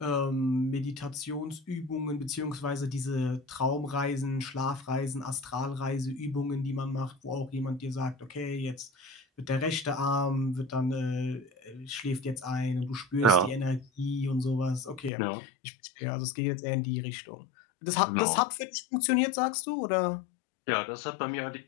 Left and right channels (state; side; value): drops out; right; at 15.1 s